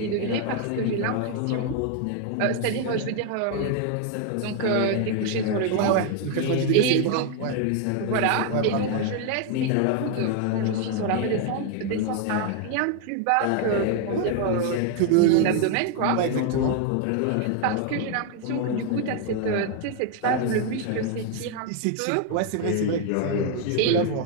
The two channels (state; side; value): different; both; correlation 0.00